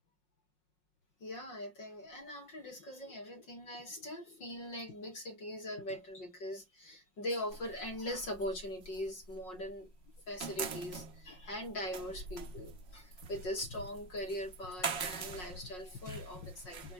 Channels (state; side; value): late; right; 5.5 ms